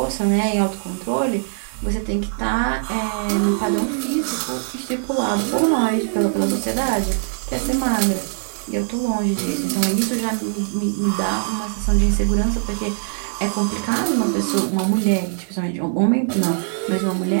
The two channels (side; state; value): left; silent; 63 dB below the other